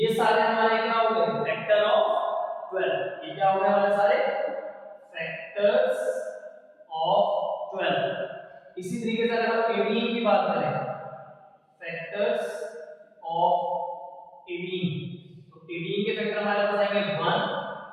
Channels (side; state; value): both; identical; correlation 1.00